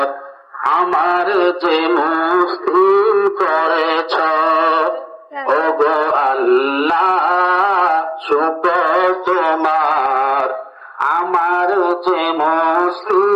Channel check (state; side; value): identical; both; correlation 1.00